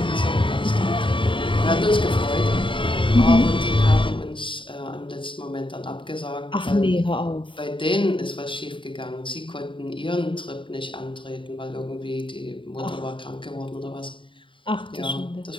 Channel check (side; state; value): right; late; 0.25 ms